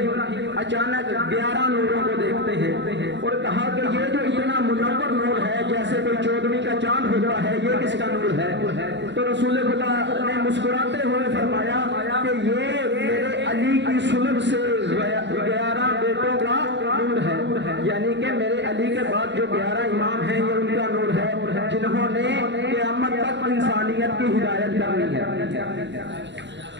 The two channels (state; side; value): late; left; 0.52 ms